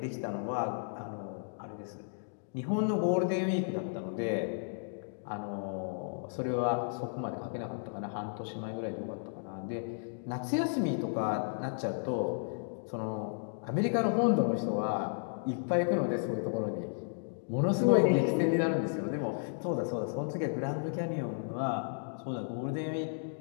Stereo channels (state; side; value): silent; right; digital silence